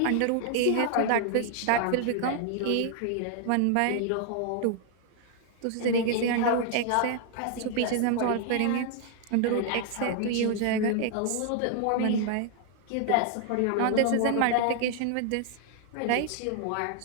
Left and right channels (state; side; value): different; both; correlation 0.00